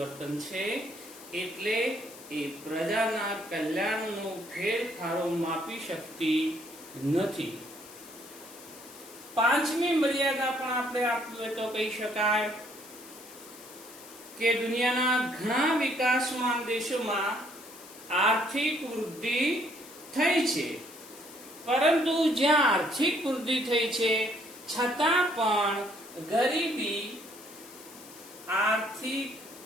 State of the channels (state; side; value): noise; left; hiss, 18 dB below the sound